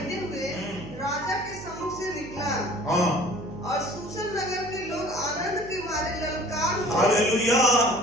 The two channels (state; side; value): noise; right; hum, 14 dB below the sound